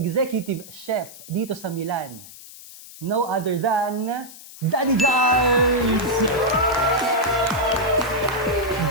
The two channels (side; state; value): left; noise; hiss, 17 dB below the sound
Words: chef dito sa Milan. No other than Daddy Jars!